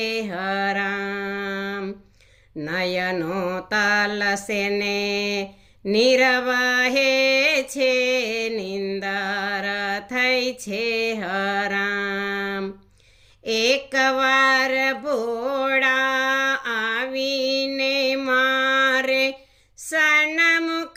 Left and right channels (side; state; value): both; identical; correlation 1.00